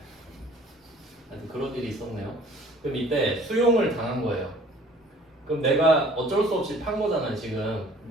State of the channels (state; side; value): normal; both; correlation 0.52